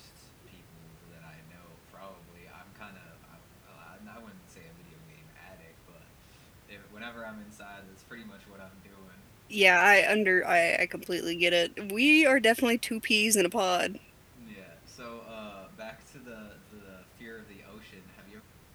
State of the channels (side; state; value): both; identical; correlation 1.00